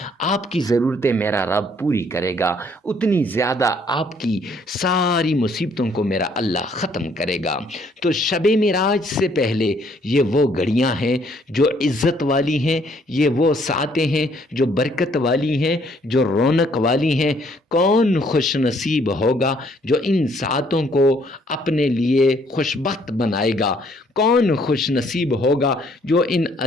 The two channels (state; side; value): normal; both; correlation 0.65